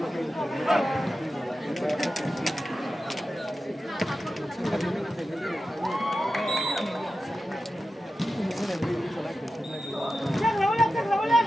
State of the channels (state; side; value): normal; both; correlation 0.92